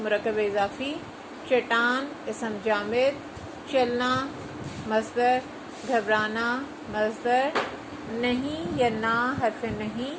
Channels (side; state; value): both; identical; correlation 1.00